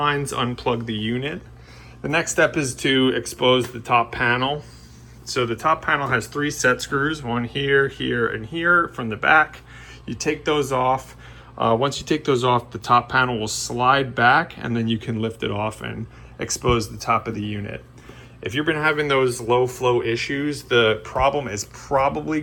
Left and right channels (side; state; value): both; identical; correlation 1.00